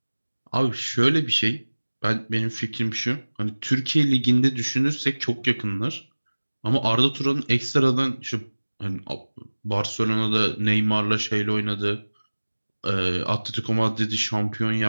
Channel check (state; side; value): inverted; both; correlation -1.00